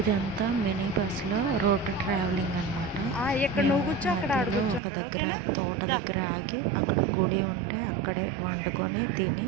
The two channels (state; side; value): drops out; left; at 4.8 s